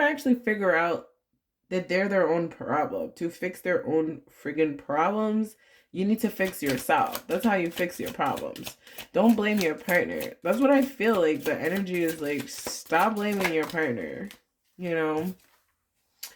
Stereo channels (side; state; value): both; identical; correlation 1.00